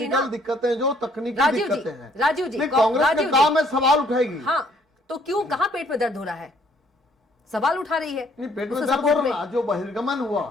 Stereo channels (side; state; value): both; normal; correlation 0.63